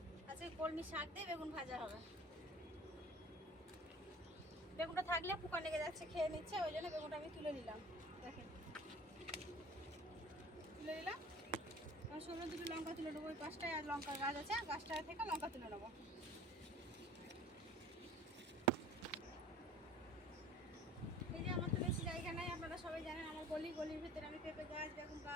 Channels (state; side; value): normal; both; correlation 0.45